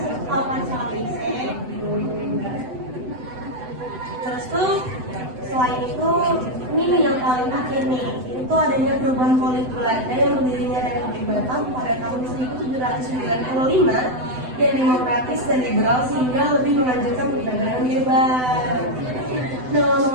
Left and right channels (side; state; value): left; late; 7.9 ms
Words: tahu kan soal EIC? Terus tuh selain itu ini Ini yang paling akhir nih, itu adanya perubahan politik Belanda yang berdirinya Republik Batam pada tahun 1795 yang demokratis dan liberal sehingga lebih menganjurkan perdagangan bebas. Nah,